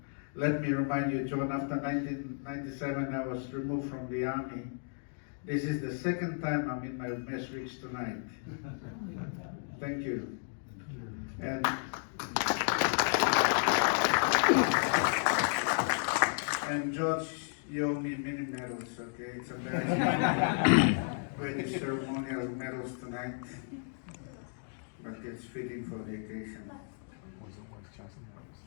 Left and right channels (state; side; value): silent; right; 56 dB below the other